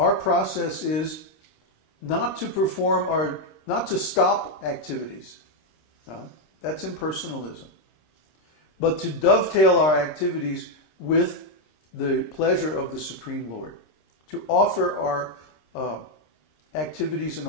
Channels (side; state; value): right; late; 26 ms